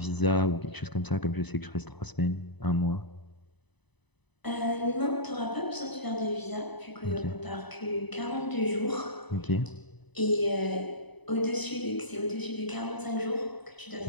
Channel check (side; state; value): right; late; 1.0 ms